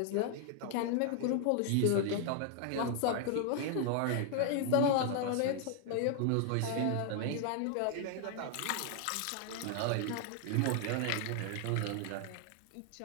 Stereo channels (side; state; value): both; different; correlation 0.00